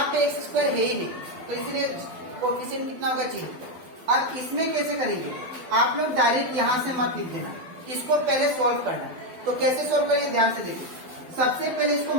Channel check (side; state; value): left; late; 12 ms